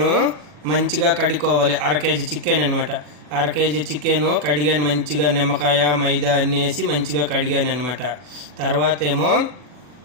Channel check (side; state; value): left; late; 40 ms